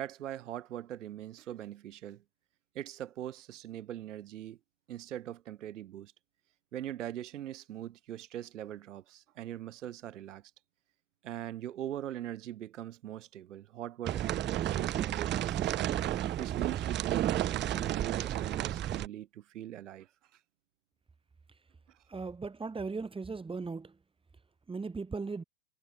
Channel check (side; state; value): left; quieter; 10.5 dB